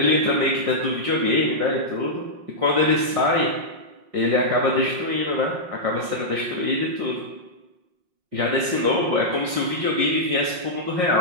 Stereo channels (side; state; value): left; late; 5.6 ms